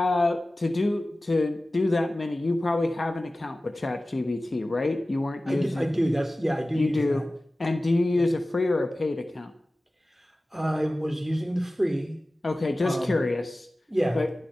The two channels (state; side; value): normal; both; correlation 0.96